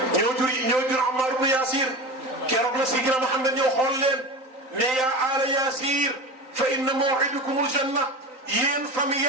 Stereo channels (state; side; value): late; left; 3.9 ms